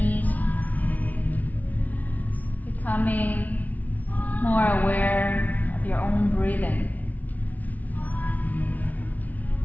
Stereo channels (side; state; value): right; late; 0.075 ms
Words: becoming more aware of your own breathing.